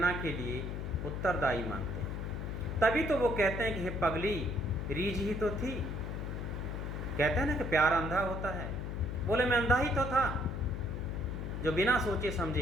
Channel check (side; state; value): left; noise; hum, 4 dB below the sound